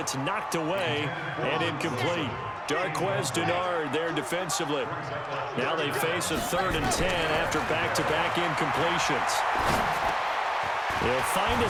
knocked away and incomplete. Darquez Denard there defensively. Now they face a 3rd and 10 after back-to-back incompletions. He'll find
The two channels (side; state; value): both; identical; correlation 1.00